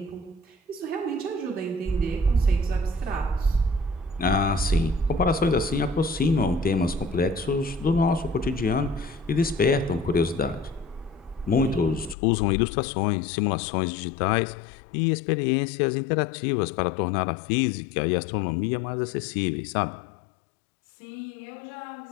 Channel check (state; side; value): drops out; right; at 12.2 s